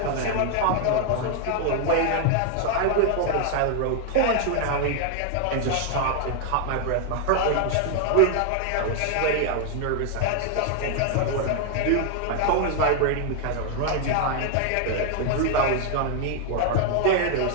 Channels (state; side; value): different; both; correlation 0.00